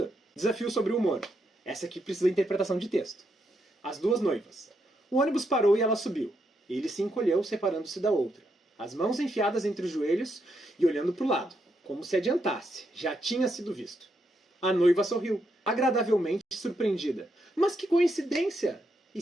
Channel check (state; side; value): normal; both; correlation 0.80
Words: Desafio sobre o humor. Essa aqui precisa de interpretação de texto. As duas noivas. O ônibus parou e ela subiu. Ele se encolheu, separando-se da outra. As mãos enfiadas entre os joelhos e olhando para o lado, como se adiantasse. Já tinha sido visto. A noiva sorriu, agradavelmente surpreendida. Mas que coincidência! E